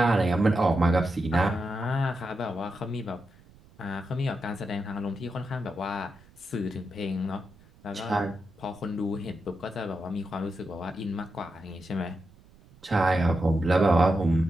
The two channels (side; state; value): right; noise; rumble, 26 dB below the sound